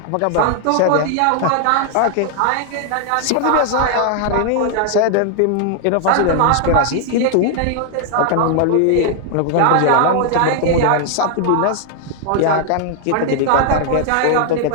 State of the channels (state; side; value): different; both; correlation 0.00